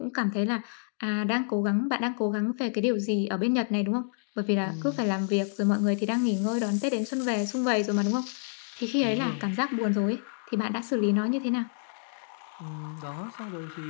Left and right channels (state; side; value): silent; right; digital silence